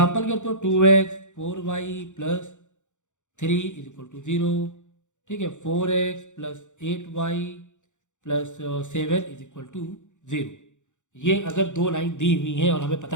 के तो 2x 4y plus 3 is equal to 0। ठीक है, 4x plus 8y plus 7 is equal to 0। ये अगर दो लाइन दी हुई हैं और हमें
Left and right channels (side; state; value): right; late; 0.85 ms